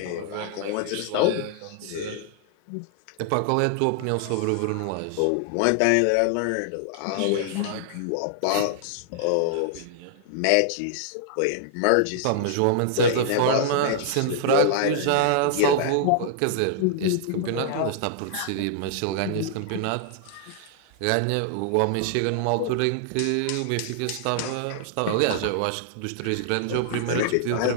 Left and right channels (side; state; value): both; different; correlation -0.01